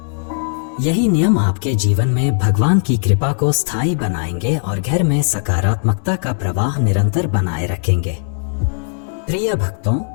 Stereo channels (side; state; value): right; silent; digital silence